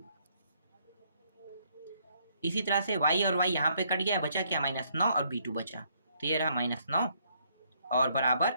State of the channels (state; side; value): inverted; both; correlation -0.69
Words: इसी तरह से y और y यहाँ पे कट गया, बचा क्या? -9 और b2 बचा। तो ये रहा -9 और बराबर